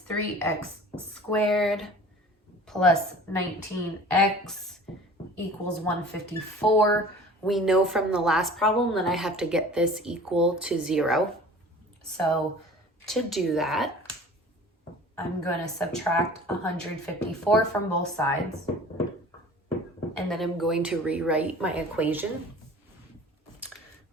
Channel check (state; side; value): normal; both; correlation 0.44